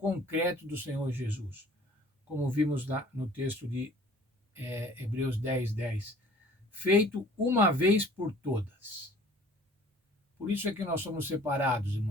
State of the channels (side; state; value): both; normal; correlation 0.51